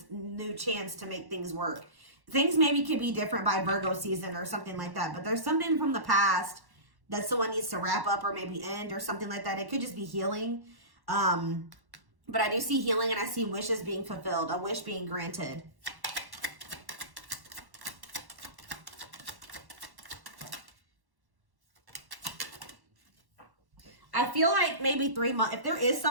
new chance to make things work. Things maybe could be different by Virgo season or something like that. But there's something from the past that someone needs to wrap up or maybe end or something like that. It could just be healing. But I do see healing and I see wishes being fulfilled, a wish being granted. I feel like maybe 3 months, if there is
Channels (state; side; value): late; left; 1.1 ms